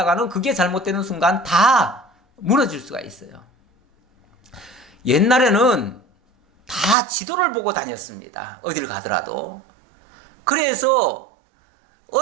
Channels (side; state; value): left; drops out; at 7.0 s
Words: 그게 잘못되는 순간 다 무너질 수가 있어요. 옛날에는 다 지도를 보고 다녔습니다. 어딜 가더라도. 그래서